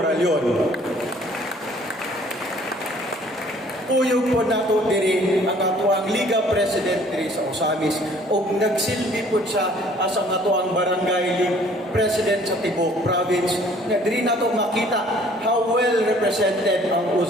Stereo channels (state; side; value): normal; both; correlation 0.56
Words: Puyog po nato diri ang ato ang Liga President diri sa Ozamiz ug nagsilbi po siya as ang ato ang Barangay League President sa Tibok Province. Diri nato makita how well represented ang